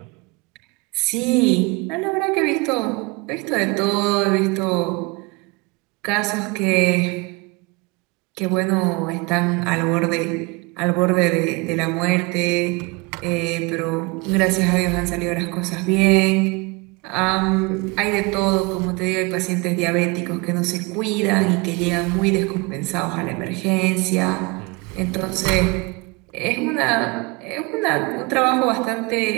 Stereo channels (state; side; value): quieter; left; 26.6 dB